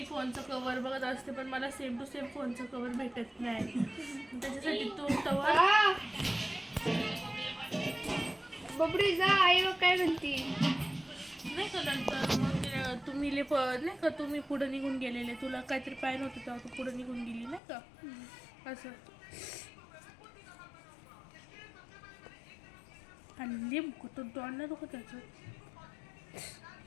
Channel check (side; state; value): right; drops out; at 17.6 s